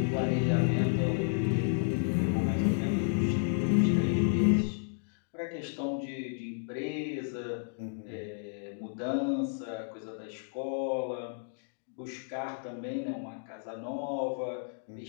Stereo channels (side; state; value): right; silent; digital silence